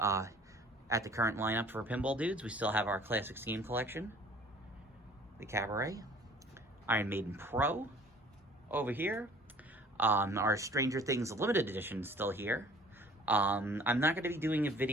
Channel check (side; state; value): both; normal; correlation 0.51